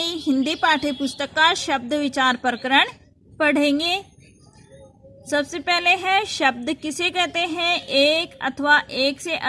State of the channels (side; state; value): both; identical; correlation 1.00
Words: हिंदी पाठ्य पुस्तक का शब्द विचार प्रकरण पढ़ेंगे। सबसे पहले है शब्द किसे कहते हैं। एक अथवा एक से